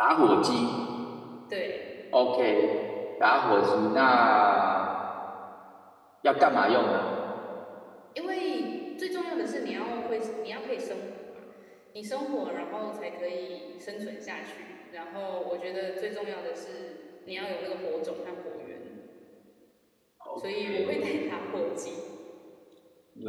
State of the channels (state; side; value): identical; both; correlation 1.00